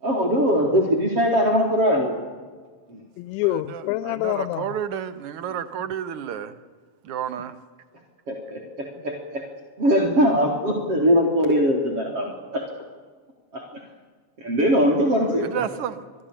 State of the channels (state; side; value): late; left; 7.4 ms